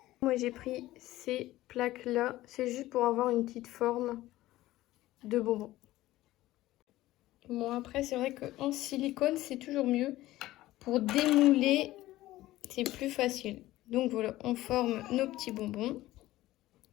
Moi, j'ai pris ces plaques-là. C'est juste pour avoir une petite forme de bonbon. Bon, après, c'est vrai qu'en silicone, c'est toujours mieux. Pour démouler, c'est plus facile. Donc voilà, on forme nos petits bonbons.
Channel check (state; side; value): quieter; right; 16.3 dB